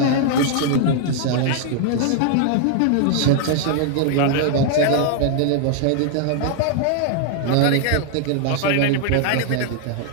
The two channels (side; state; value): both; different; correlation 0.00